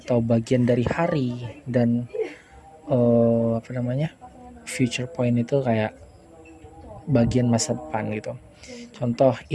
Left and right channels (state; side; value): identical; both; correlation 1.00